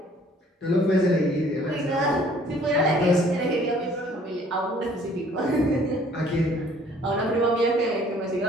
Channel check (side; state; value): both; normal; correlation 0.57